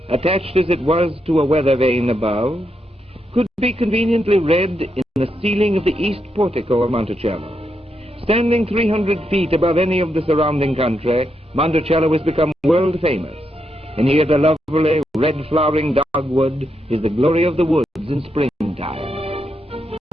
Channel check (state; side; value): normal; both; correlation 0.82